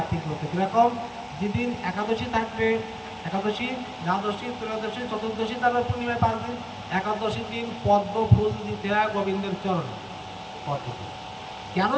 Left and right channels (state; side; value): identical; both; correlation 1.00